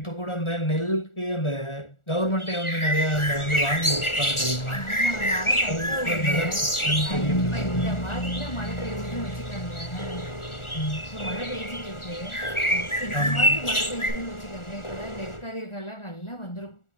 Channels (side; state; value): right; late; 1.4 ms